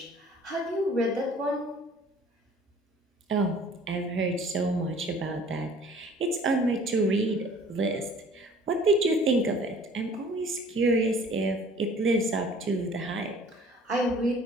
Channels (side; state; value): both; normal; correlation 0.52